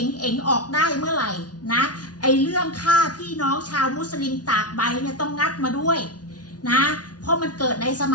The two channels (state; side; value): late; right; 0.69 ms